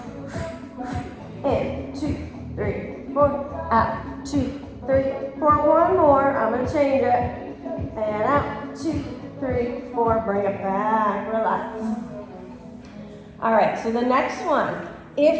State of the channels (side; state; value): both; identical; correlation 1.00